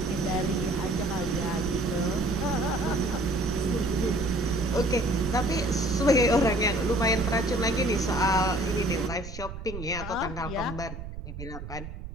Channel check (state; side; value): noise; right; rumble, 10 dB below the sound